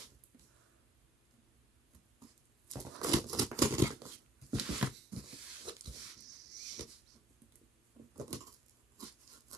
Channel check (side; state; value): both; normal; correlation 0.60